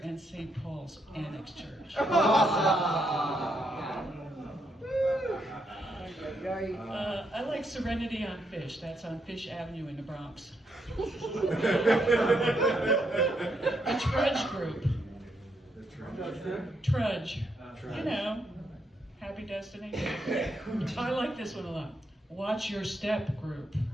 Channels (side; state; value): both; normal; correlation 0.78